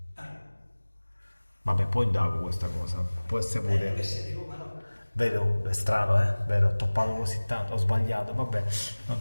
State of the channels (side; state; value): both; inverted; correlation -1.00